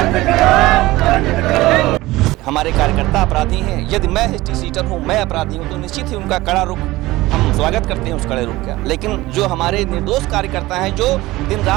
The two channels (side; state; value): left; quieter; 18.7 dB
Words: करो, बंद करो। हमारे कार्यकर्ता अपराधी हैं, यदि मैं हिस्ट्री सीटर हूँ, मैं अपराधी हूँ, तो निश्चित ही उनका कड़ा रुख हम स्वागत करते हैं उस कड़े रुख का। लेकिन जो हमारे निर्दोष कार्यकर्ता हैं जो दिन